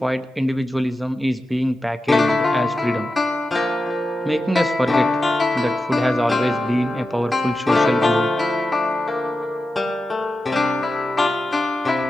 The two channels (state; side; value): normal; both; correlation 0.91